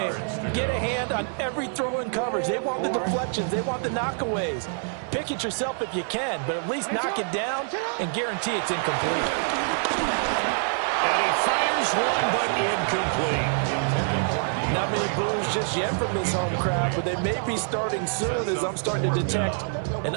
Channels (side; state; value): left; silent; 61 dB below the other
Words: Get a hand on every throw in coverage. They want the deflections. They want the knockaways. Pick it yourself if you can, but at least knock it down and guarantee it's incomplete. And he fires one, but incomplete. Not many boos just yet from this home crowd, but they may be starting soon as I'm starting to detect an